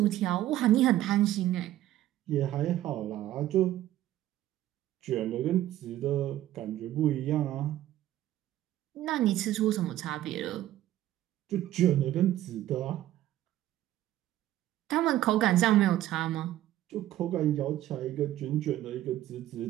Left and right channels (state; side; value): quieter; left; 13.8 dB